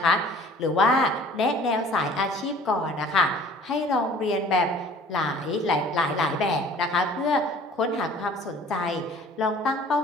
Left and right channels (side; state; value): both; normal; correlation 0.50